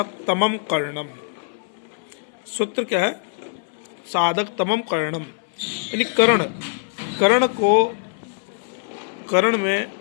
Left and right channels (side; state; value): right; silent; 63 dB below the other